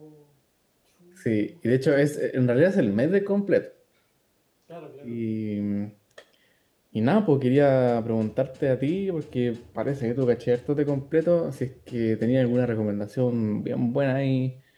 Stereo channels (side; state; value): both; identical; correlation 1.00